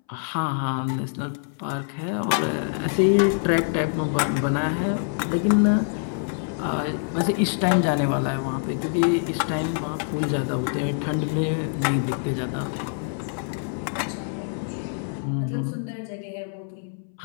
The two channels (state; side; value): silent; right; 62 dB below the other